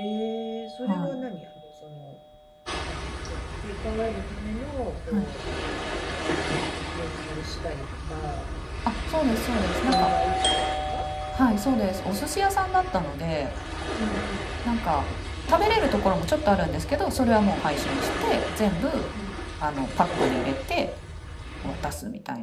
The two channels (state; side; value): identical; both; correlation 1.00